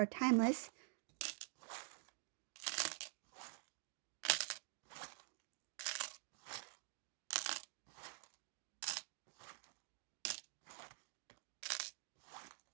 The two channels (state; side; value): silent; left; digital silence